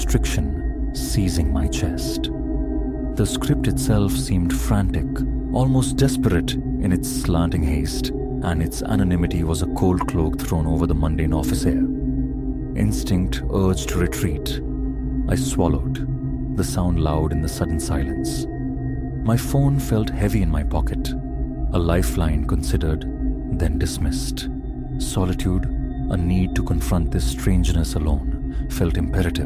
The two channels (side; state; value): both; identical; correlation 1.00